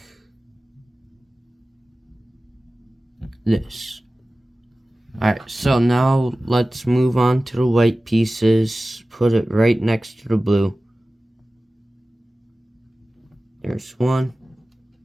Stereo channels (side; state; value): both; normal; correlation 0.96